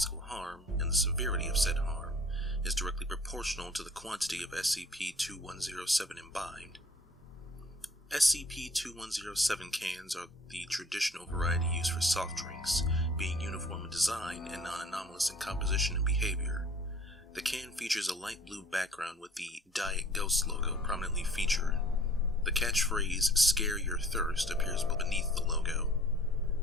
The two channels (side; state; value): both; normal; correlation 0.52